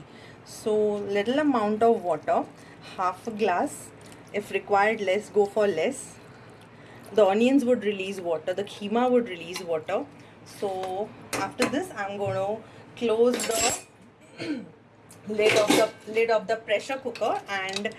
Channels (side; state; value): both; identical; correlation 1.00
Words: So little amount of water, half a glass. If required less, go for less. The onions would release water, the keema would release water. So after this I'm going to close the lid of the pressure cooker, and